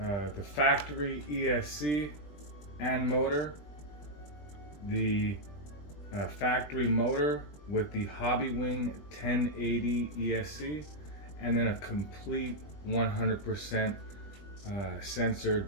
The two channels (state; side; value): late; right; 20 ms